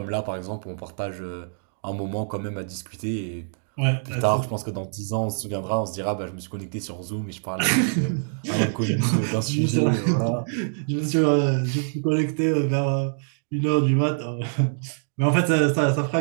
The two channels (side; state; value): left; silent; digital silence